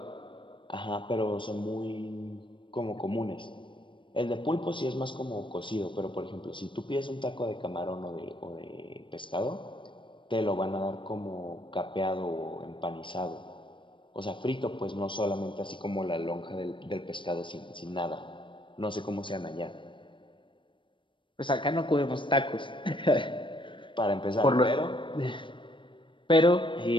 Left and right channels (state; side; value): late; right; 0.24 ms